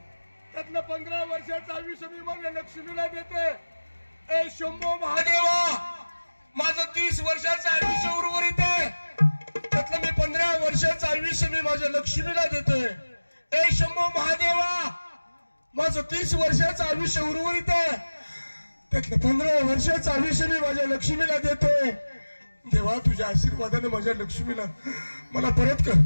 त्यातलं 15 वर्षाचं आयुष्य मी माझ्या लक्ष्मीला देते. ए शंभो महादेवा माझं 30 वर्षाचं आयुष्य उर्वरित आहे त्यातलं मी 15 वर्षाचं आयुष्य मी माझ्या लक्ष्मीला देतोय. ए शंभो महादेवा माझं 30 वर्षाचं आयुष्य उर्वरित आहे त्यातलं 15 वर्षाचं आयुष्य मी माझ्या लक्ष्मीला देतोय. देवा तुझ्या आशीर्वादाने माझ्या लक्ष्मीला मला परत कर.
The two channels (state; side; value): inverted; both; correlation -1.00